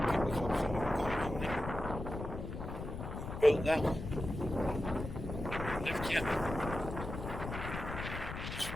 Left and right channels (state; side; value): noise; left; rumble, 7 dB below the sound